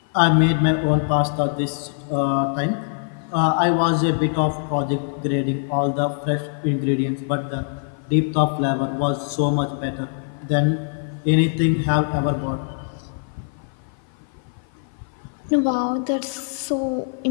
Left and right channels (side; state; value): right; silent; 55 dB below the other